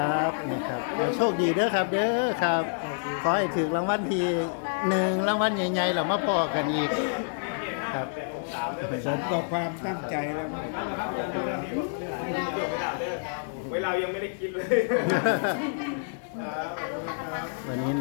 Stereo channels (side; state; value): right; silent; digital silence